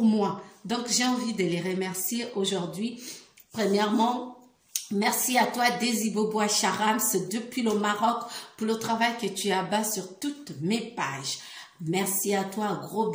moi. Donc, j'ai envie de les remercier aujourd'hui. Premièrement, merci à toi, Desibobois Charams, depuis le Maroc, pour le travail que tu abats sur toutes mes pages. Merci à toi, gros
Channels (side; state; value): both; identical; correlation 1.00